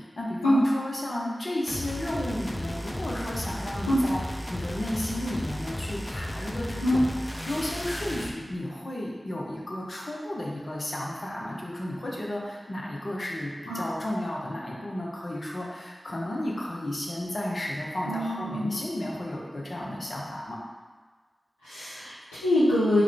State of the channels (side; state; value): both; normal; correlation 0.93